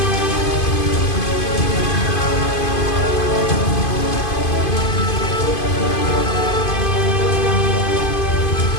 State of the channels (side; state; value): right; late; 2.5 ms